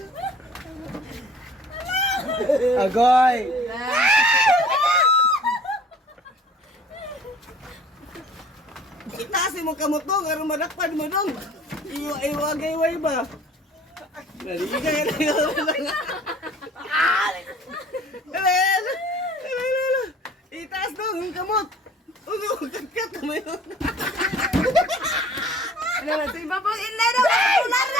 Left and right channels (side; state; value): both; normal; correlation 0.51